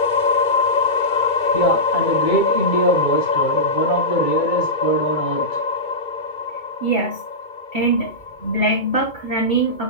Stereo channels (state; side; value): late; right; 2.2 ms